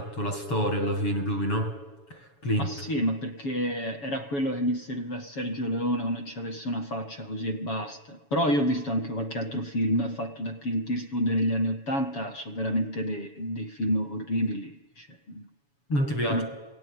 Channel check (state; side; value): late; right; 7.1 ms